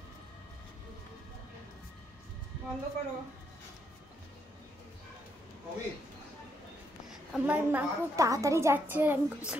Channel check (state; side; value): normal; both; correlation 0.76